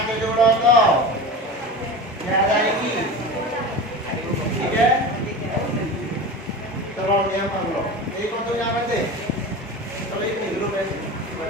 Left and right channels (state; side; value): normal; both; correlation 0.30